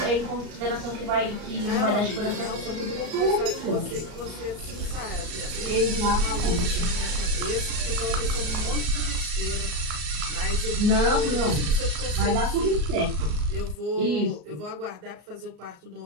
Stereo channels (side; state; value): left; late; 34 ms